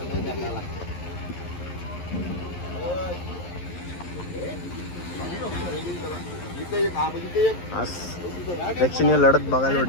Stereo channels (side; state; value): right; late; 11 ms